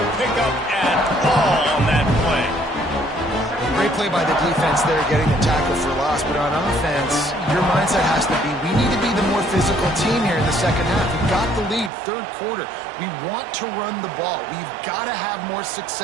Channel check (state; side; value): drops out; left; at 11.9 s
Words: pickup at all on that play. Great play by the defense there, getting the tackle for loss. But on offense, your mindset has to be, we need to be the more physical team here in the second half. We've got the lead, 3rd quarter. We want to run the ball. We've got to have more